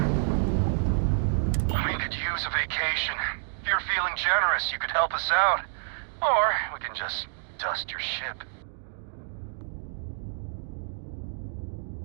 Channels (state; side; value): silent; left; digital silence